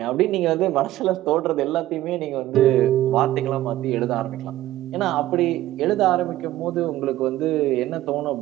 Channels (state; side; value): quieter; left; 14.8 dB